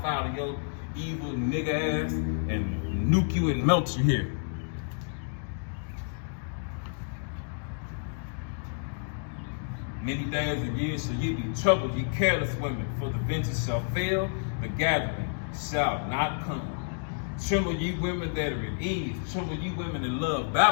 file to your evil nigga ass and nuke you and melt you here. Many days and years shall ye be troubled, ye careless women, for the vintage shall fail, the gathering shall not come. Tremble ye women that are at ease, tremble ye women that love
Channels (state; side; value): silent; right; digital silence